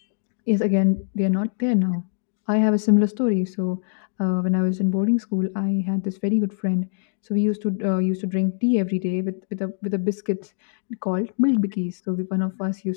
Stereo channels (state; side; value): silent; right; digital silence